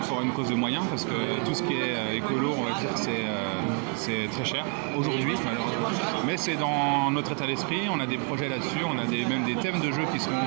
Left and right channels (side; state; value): left; quieter; 39.0 dB